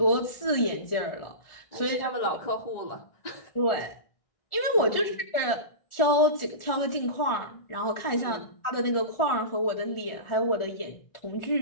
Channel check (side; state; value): right; late; 1.4 ms